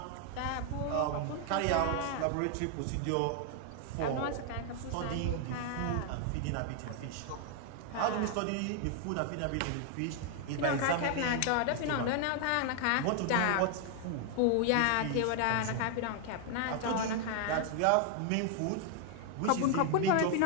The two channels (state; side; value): different; both; correlation 0.00